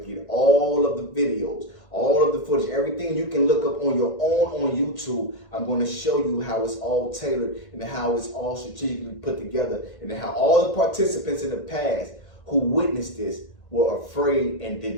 to get all of the videos, all of the footage, everything you can look up on your own on YouTube. I'm going to show you how it's all tailored and how it's all strategically put together, and how all the participants in the past who witnessed this were afraid and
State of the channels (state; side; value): late; right; 1.5 ms